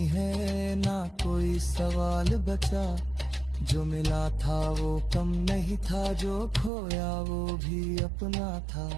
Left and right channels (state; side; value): drops out; left; at 6.7 s